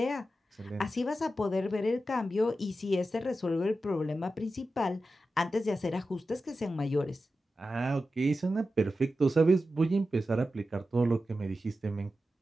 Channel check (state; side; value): normal; both; correlation 0.92